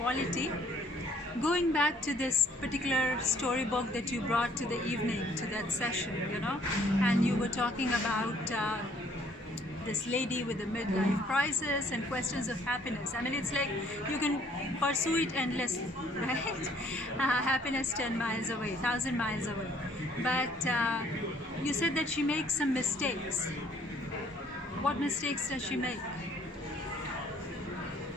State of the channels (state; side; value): normal; both; correlation 0.61